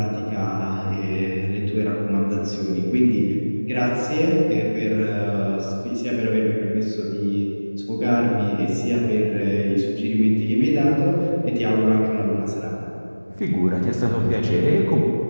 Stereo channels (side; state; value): both; inverted; correlation -1.00